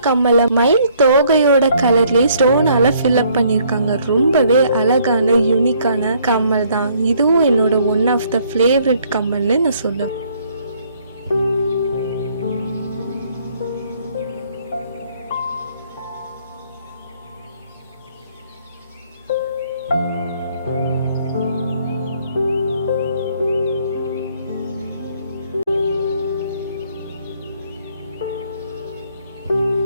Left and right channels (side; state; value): both; inverted; correlation -0.64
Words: கம்மலை மயில் தோகையோட கலர்லயே ஸ்டோனால ஃபில் அப் பண்ணிருக்காங்க. ரொம்பவே அழகான யூனிக்கான கம்மல் தான். இதுவும் என்னோட ஒன் ஆஃப் த ஃபேவரட் கம்மல்னு நான் சொல்லுவேன்.